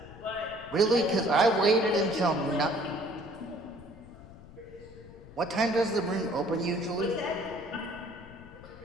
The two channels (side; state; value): left; noise; rumble, 18 dB below the sound